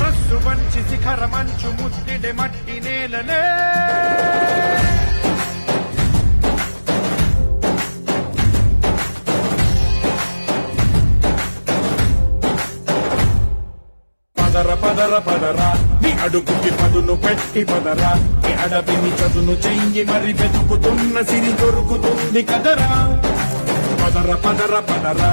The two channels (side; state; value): both; inverted; correlation -1.00